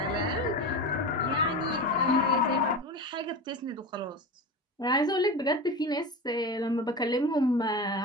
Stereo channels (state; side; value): normal; both; correlation 0.27